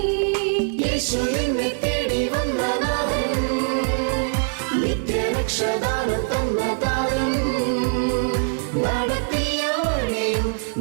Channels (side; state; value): left; silent; digital silence